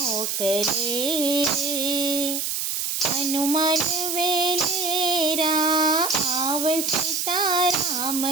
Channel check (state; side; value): noise; right; hiss, 1 dB below the sound